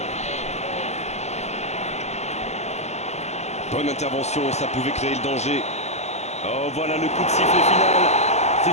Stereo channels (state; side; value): late; right; 0.32 ms